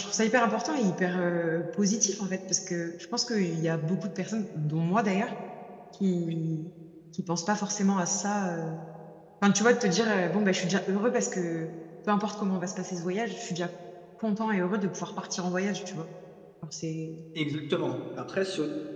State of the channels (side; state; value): both; identical; correlation 1.00